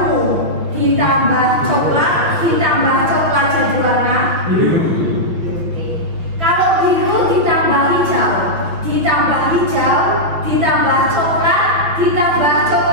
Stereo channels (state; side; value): late; left; 5.7 ms